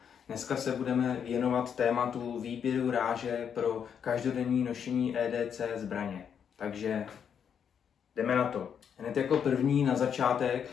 Dneska se budeme věnovat tématu výběru ráže pro každodenní nošení EDC zbraně. Takže jdeme na to. Hned jako první na začátek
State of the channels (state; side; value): quieter; right; 7.8 dB